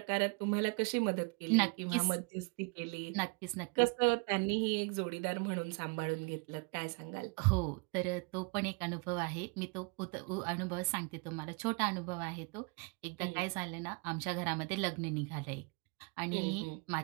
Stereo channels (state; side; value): quieter; left; 32.6 dB